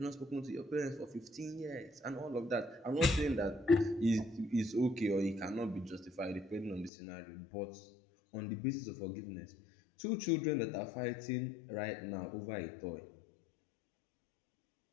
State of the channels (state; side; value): drops out; right; at 6.9 s